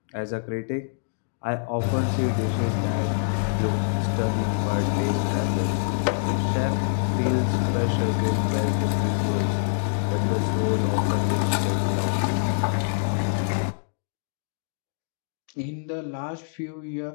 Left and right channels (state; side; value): silent; right; digital silence